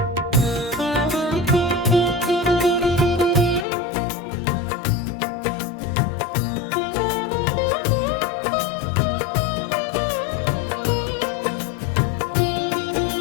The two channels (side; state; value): right; drops out; at 3.7 s